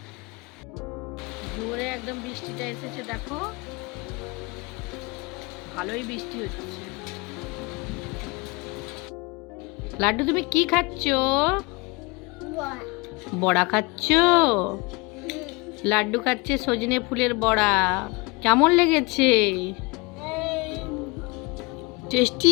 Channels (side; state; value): right; quieter; 26.5 dB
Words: জোরে একদম বৃষ্টিটা এসেছে, দেখো ভালোই বৃষ্টি হচ্ছে। লাড্ডু তুমি কি খাচ্ছ? বড়া খাচ্ছ? লাড্ডু খাচ্ছে সজনে ফুলের বড়া, কেমন লেগেছে?